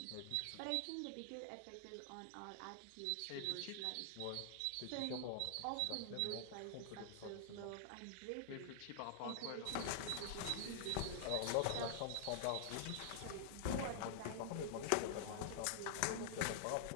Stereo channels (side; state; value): both; different; correlation -0.01